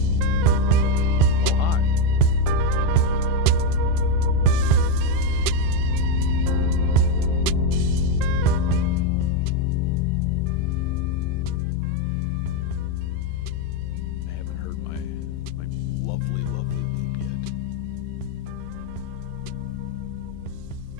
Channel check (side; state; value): both; different; correlation 0.05